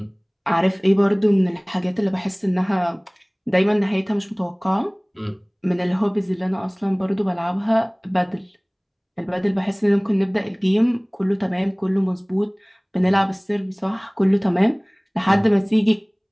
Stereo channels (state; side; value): identical; both; correlation 1.00